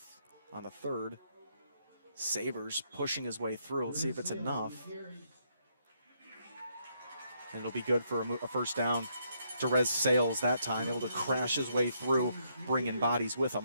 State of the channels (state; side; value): inverted; both; correlation -0.75